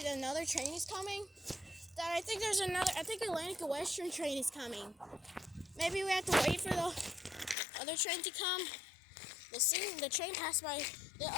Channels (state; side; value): drops out; right; at 7.6 s